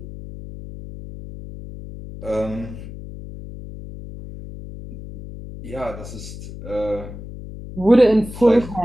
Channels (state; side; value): noise; left; hum, 12 dB below the sound